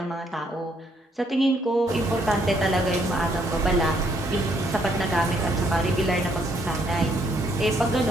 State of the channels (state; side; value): normal; both; correlation 0.70